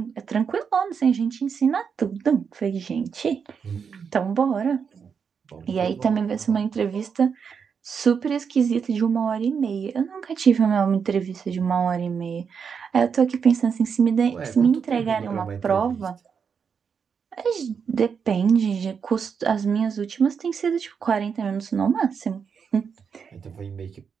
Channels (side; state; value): left; quieter; 6.4 dB